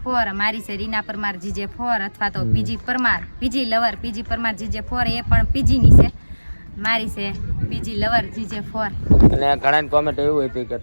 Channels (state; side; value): inverted; both; correlation -1.00